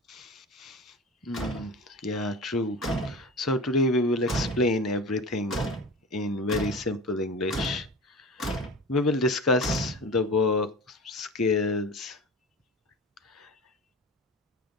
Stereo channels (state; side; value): normal; both; correlation 0.33